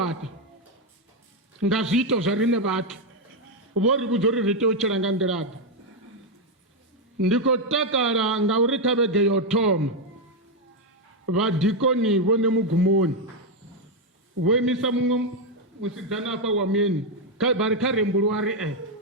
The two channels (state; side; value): normal; both; correlation 0.03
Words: nga zwiito zwa rine vhathu, vho ri vhudza uri ri tea u tshila nga nḓilaḓe. Ndi khou takala ngauri kha vhege yo thoma vadikoni vhone mugumoni vho imisa muṅwe musidzana afha wa muyeni vha ri kha rembuluwa ri